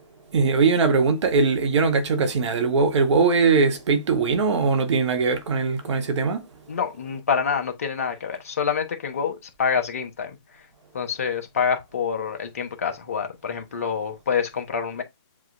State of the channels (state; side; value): inverted; both; correlation -0.41